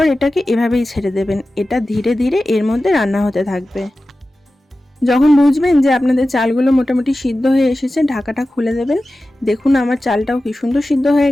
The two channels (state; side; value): normal; both; correlation 0.95